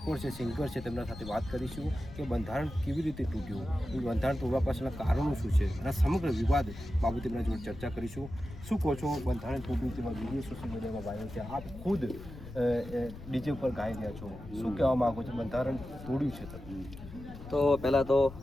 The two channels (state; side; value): noise; left; rumble, 14 dB below the sound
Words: છે, સિંગર છે, તેમના સાથે વાત કરીશું કે બંધારણ કેવી રીતે તૂટ્યું, એ બંધારણ તોડવા પાછળના કારણો શું છે અને સમગ્ર વિવાદ બાબતે તેમના જોડે ચર્ચા કરીશું. શું કહો છો, બંધારણ તૂટ્યું તેમાં વિડીયો સોશિયલ મીડિયામાં વાયરલ છે, આપ ખુદ ડીજે ઉપર ગાઈ રહ્યા છો, શું કહેવા માગો છો, બંધારણ તોડ્યું છે તમે? તો પહેલાં તો